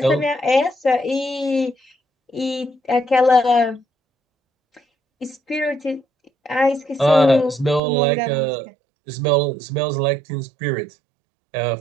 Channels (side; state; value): left; drops out; at 7.8 s